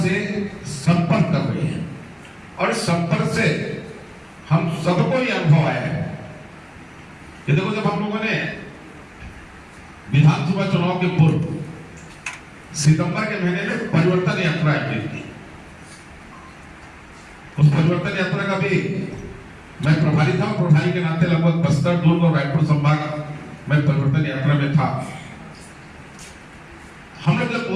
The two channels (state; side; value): identical; both; correlation 1.00